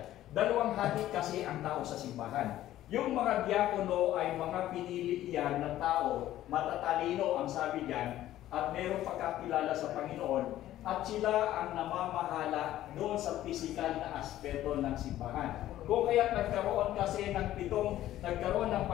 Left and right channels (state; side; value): quieter; right; 13.6 dB